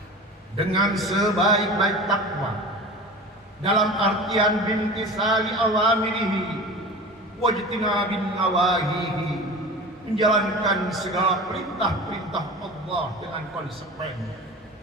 dengan sebaik-baik takwa, dalam artian bintisali awamirihi wajtinabin nawahihi, menjalankan segala perintah-perintah Allah dengan konsekuensi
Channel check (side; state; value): both; normal; correlation 0.35